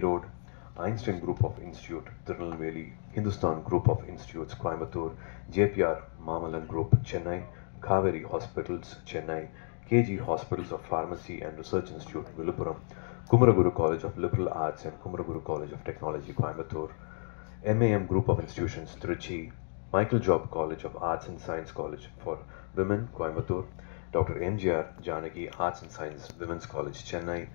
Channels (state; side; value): silent; right; 56 dB below the other